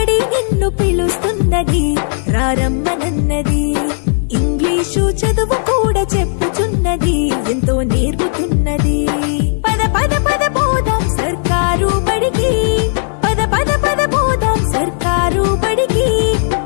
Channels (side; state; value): right; silent; digital silence